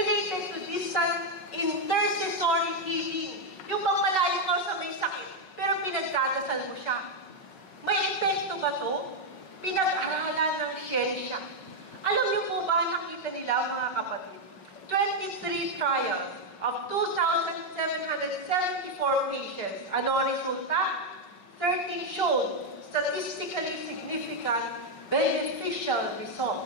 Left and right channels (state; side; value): late; right; 5.4 ms